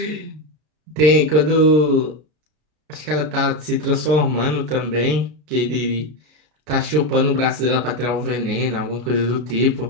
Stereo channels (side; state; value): left; late; 33 ms